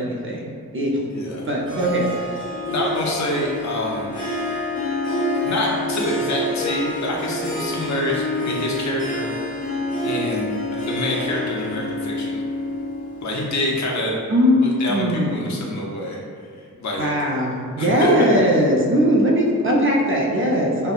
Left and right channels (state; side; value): normal; both; correlation 0.27